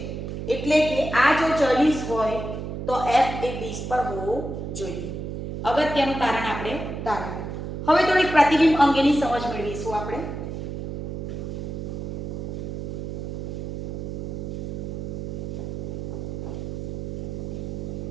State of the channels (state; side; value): noise; right; hum, 5 dB below the sound